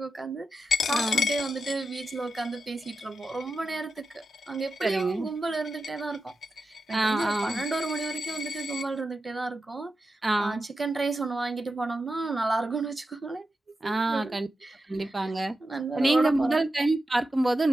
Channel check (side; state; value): both; normal; correlation 0.90